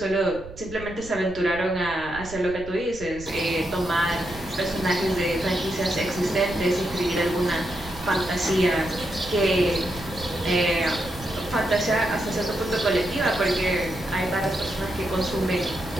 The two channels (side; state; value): right; noise; rumble, 15 dB below the sound